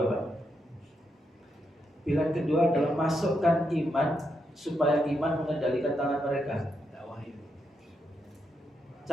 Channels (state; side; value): normal; both; correlation 0.82